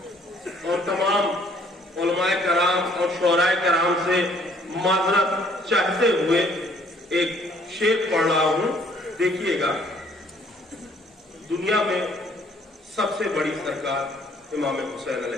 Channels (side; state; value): both; normal; correlation 0.62